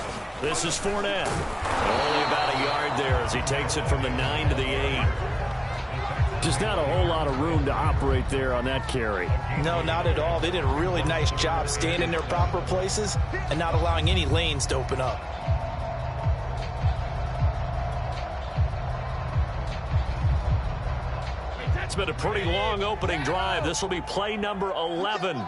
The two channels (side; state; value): both; identical; correlation 1.00